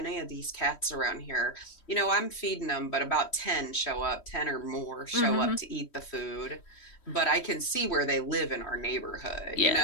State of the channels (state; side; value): late; right; 3.1 ms